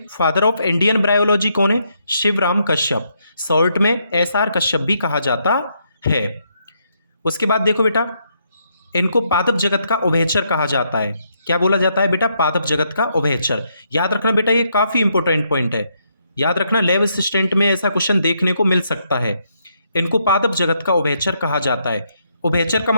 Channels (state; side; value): inverted; both; correlation -0.76